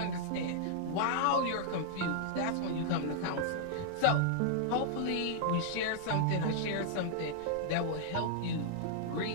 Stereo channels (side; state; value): both; different; correlation -0.01